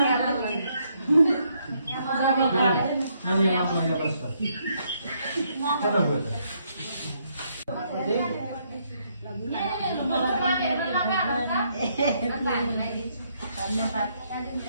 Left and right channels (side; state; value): both; inverted; correlation -0.73